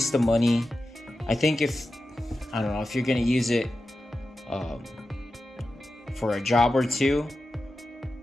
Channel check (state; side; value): normal; both; correlation 0.92